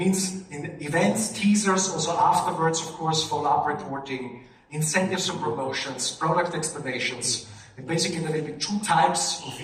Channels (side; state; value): both; identical; correlation 1.00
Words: in events, teasers, also afterwards, of course, follow-up reporting, incentives and promotions, product explanations. And basically there will be 2 types of